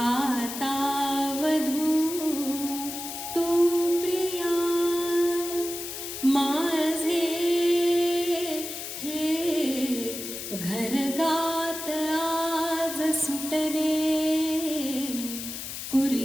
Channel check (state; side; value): noise; left; hiss, 7 dB below the sound